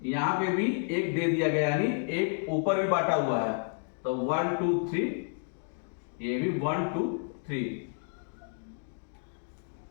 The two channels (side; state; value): right; silent; 57 dB below the other